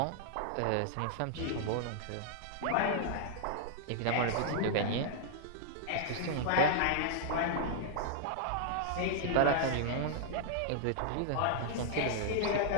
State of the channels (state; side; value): different; both; correlation -0.01